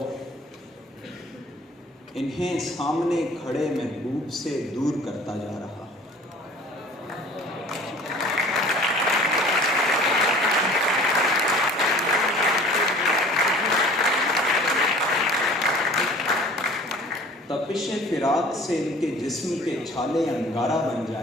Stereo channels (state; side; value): normal; both; correlation 0.47